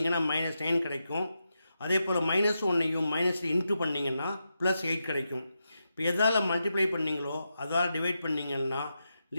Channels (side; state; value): both; inverted; correlation -0.87